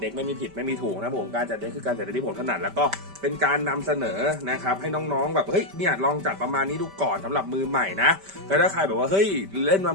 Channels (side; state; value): left; late; 5.1 ms